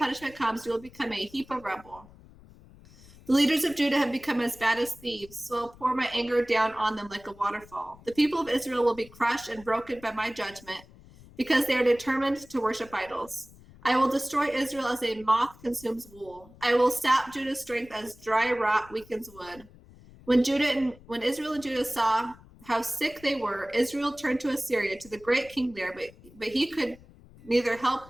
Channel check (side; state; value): left; noise; rumble, 23 dB below the sound